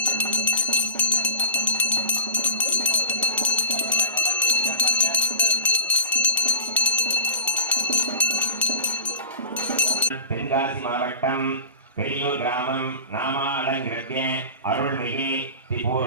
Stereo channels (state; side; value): inverted; both; correlation -0.36